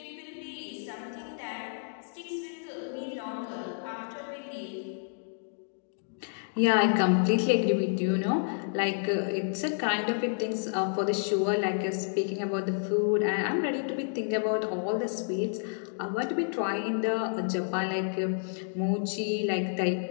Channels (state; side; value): silent; right; digital silence